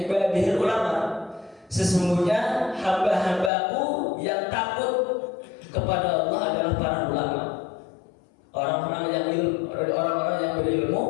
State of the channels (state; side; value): drops out; right; at 3.5 s